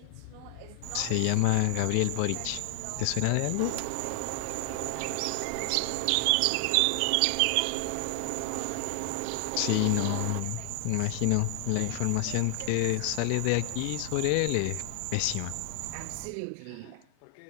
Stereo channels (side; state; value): both; different; correlation 0.00